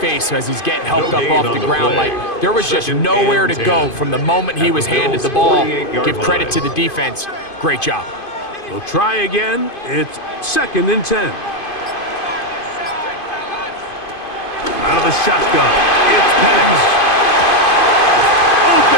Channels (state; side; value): late; right; 2.5 ms